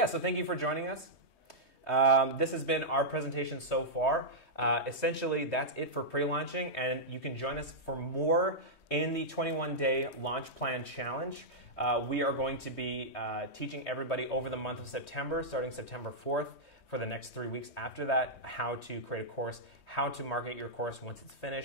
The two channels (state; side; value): late; right; 3.2 ms